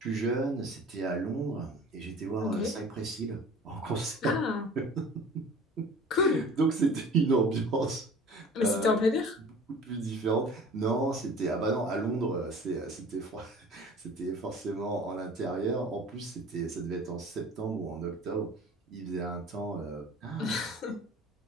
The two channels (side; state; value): both; normal; correlation 0.44